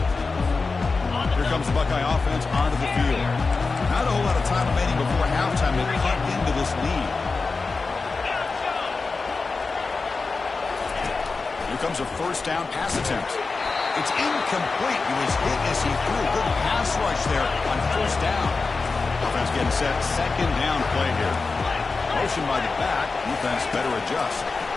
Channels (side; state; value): right; quieter; 4.1 dB